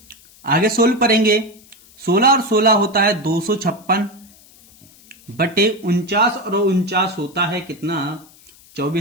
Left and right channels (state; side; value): noise; left; hiss, 26 dB below the sound